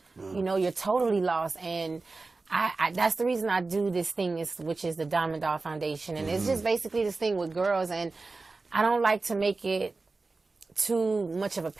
You're totally lost. And that's the reason I do this thing, which is the Diamond Doll Foundation. And it's just basically this thing with girls. And I don't like to make it too much of a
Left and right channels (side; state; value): left; quieter; 3.7 dB